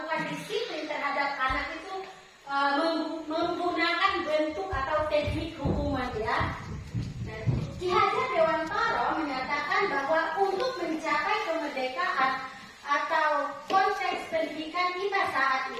disiplin terhadap anak itu menggunakan bentuk atau teknik hukuman, ya. Nah, Ki Hajar Dewantara menyatakan bahwa untuk mencapai kemerdekaan atau konteks pendidikan kita saat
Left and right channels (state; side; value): identical; both; correlation 1.00